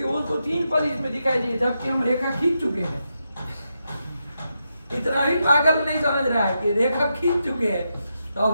उसको 3 पद इसमें दिखाई दिए, जबकि हम रेखा खींच चुके हैं। इतना भी पागल नहीं समझ रहा है कि रेखा खींच चुके हैं, तो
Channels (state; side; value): inverted; both; correlation -0.85